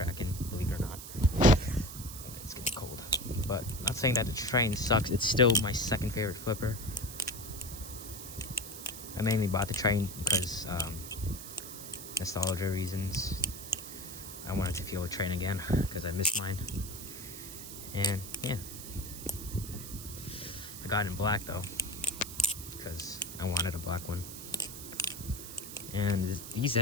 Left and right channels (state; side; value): noise; right; hiss, 11 dB below the sound